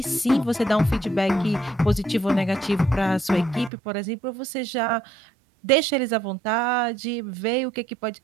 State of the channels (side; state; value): left; drops out; at 3.7 s